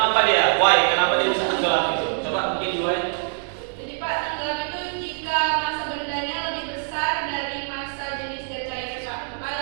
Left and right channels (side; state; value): left; silent; digital silence